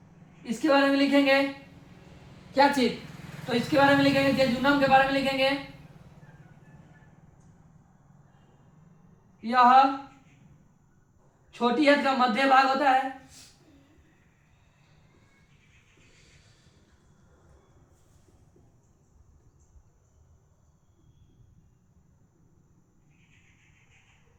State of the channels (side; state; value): both; identical; correlation 1.00